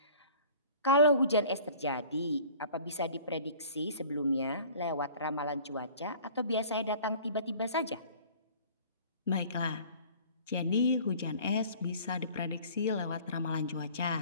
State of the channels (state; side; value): inverted; both; correlation -0.47